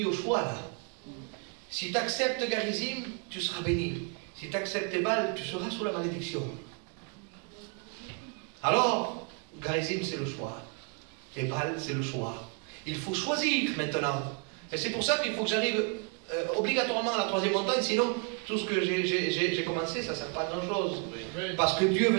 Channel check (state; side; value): quieter; left; 37.6 dB